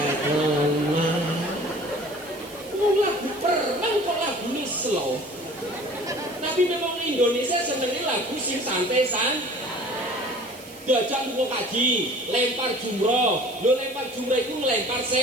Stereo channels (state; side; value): noise; right; hiss, 19 dB below the sound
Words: Wong lagu perang kok lagu ini slow. Tapi memang Indonesia senengnya lagu sing santai-santai. Diajak lu kaji, lempar jumroh. Lu lempar jumroh itu ngelempar